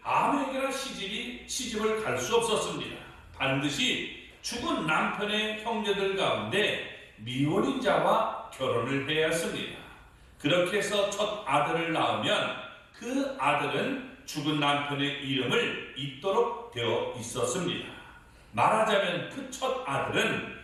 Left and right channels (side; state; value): both; identical; correlation 1.00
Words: 아무에게나 시집을 갈 수 없었습니다. 반드시 죽은 남편의 형제들 가운데 미혼인 자와 결혼을 해야 했습니다. 그렇게 해서 첫 아들을 낳으면 그 아들은 죽은 남편의 이름을 잇도록 되어 있었습니다. 말하자면 그 첫 아들은